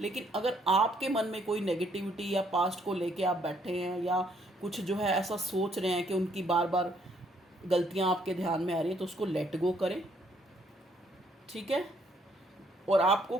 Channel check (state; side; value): normal; both; correlation 0.68